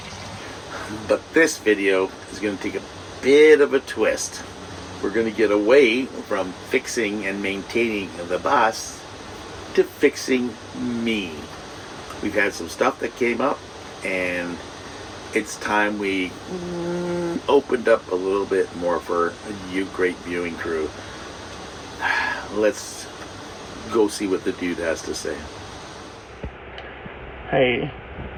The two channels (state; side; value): identical; both; correlation 1.00